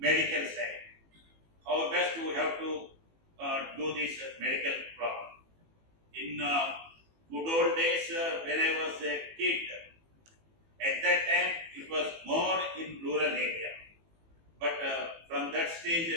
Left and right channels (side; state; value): left; late; 18 ms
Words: side. How best we have to do this medical problem. In good old days when I was a kid, at that time it was more in rural area. But from that